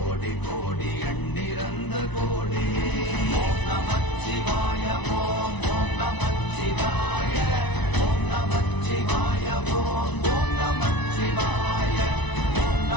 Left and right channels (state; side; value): late; right; 1.0 ms